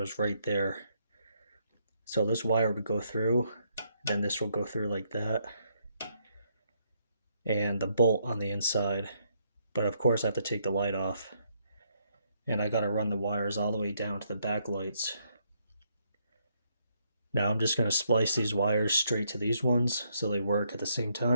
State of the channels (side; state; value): both; inverted; correlation -0.74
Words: right there. So this wire would go through, then this will go through like that, and the bolt on the inside. But of course I have to take the light off, and I gotta run the wires all the way down to the back lights. Now I'm just going to splice these wires straight to these ones so they work at the same